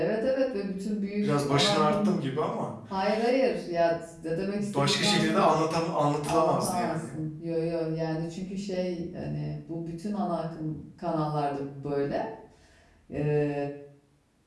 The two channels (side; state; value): both; identical; correlation 1.00